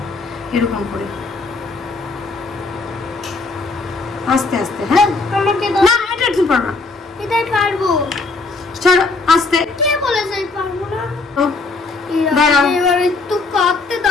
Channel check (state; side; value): quieter; right; 3.7 dB